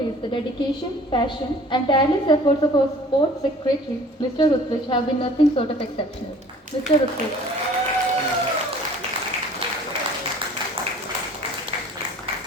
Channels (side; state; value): both; normal; correlation 0.50